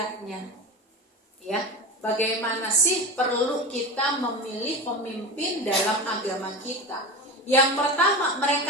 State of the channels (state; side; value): normal; both; correlation 0.26